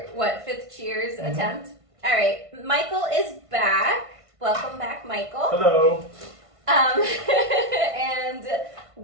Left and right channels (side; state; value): left; late; 1.5 ms